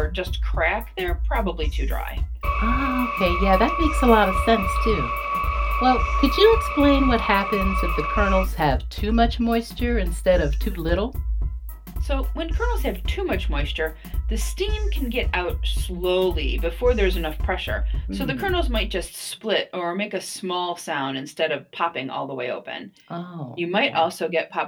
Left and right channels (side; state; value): both; identical; correlation 1.00